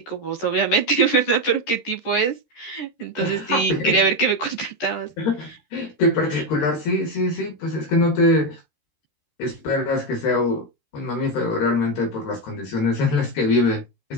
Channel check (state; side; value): late; right; 13 ms